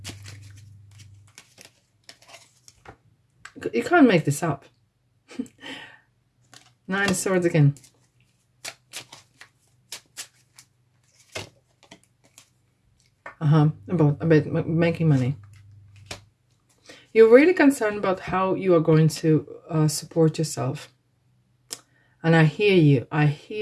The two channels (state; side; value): identical; both; correlation 1.00